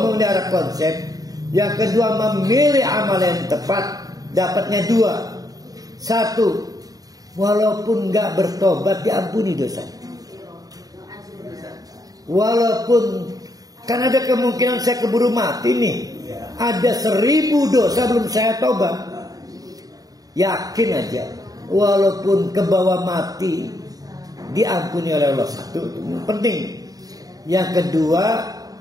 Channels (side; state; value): left; late; 0.18 ms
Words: konsep. Yang kedua, memilih amal yang tepat. Dapatnya dua. Satu, walaupun gak bertobat diampuni dosanya. Walaupun kan ada kemungkinan saya keburu mati nih, ada 1000 dosa belum saya tobat. Yakin aja, walaupun ke bawah mati diampuni oleh Allah. Satu, itu penting. Yang kedua,